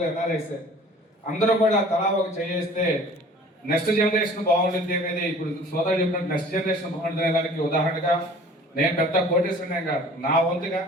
ఎన్ఆర్ఐసే. అందరూ కూడా తలా ఒక చేస్తే నెక్స్ట్ జనరేషన్ బాగుంటుంది అనేది ఇప్పుడు సోదరు చెప్పినట్టు నెక్స్ట్ జనరేషన్ బాగుంటుంది దానికి ఉదాహరణగా నేను పెద్ద కోటేశ్వరనే కాదు, నా వంతుగా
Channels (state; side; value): normal; both; correlation 0.48